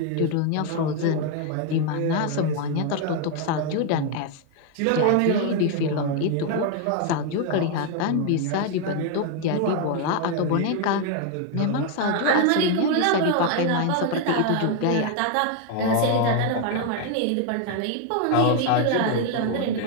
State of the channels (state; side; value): different; both; correlation 0.01